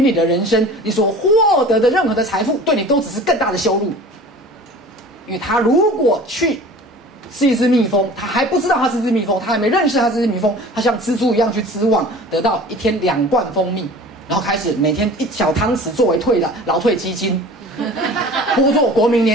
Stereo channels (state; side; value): normal; both; correlation 0.42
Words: 的人生，你所获得的任何的财富，对你都只是更大的羞辱。因为他如果去是一只蜜蜂，他还不知道他是一只蜜蜂，他还没认识他是一只蜜蜂，他像蜘蛛一样去织网，得到一天2罐蜂蜜，然后开始每天1小汤匙作为劳退基金，拨作国民